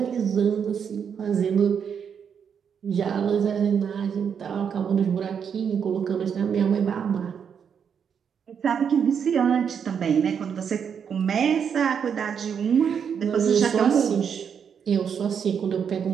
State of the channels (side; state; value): left; quieter; 7.3 dB